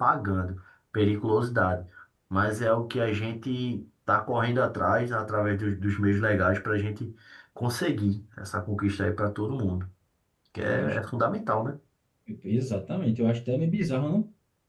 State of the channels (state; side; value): identical; both; correlation 1.00